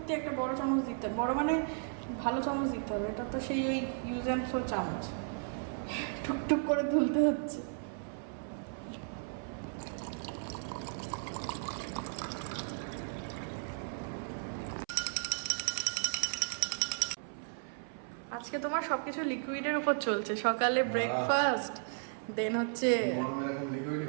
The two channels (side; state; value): left; silent; 54 dB below the other